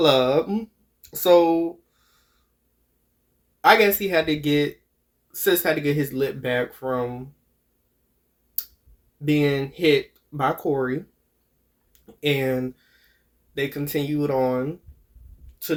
So I guess Sis had to get his lip back from being hit by Corey, and they continued on to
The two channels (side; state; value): both; identical; correlation 1.00